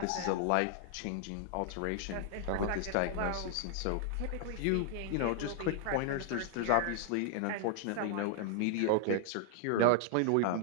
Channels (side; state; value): both; different; correlation 0.00